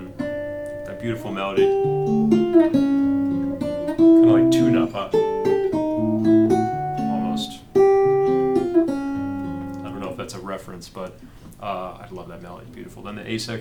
that beautiful melody, kind of like tune up, huh? That's a reference, but I love that melody. Beautiful. Then the A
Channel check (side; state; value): both; identical; correlation 1.00